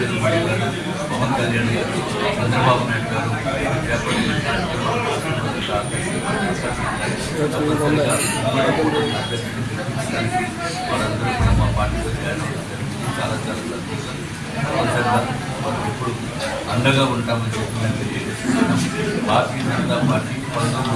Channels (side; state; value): both; identical; correlation 1.00